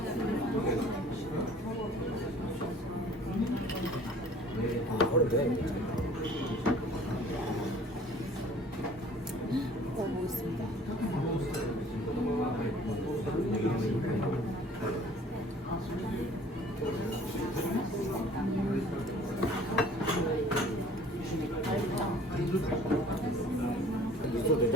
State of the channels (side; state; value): both; normal; correlation 0.52